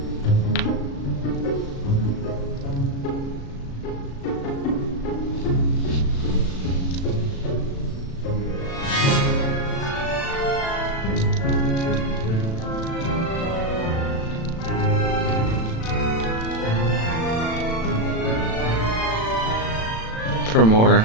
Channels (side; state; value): right; late; 36 ms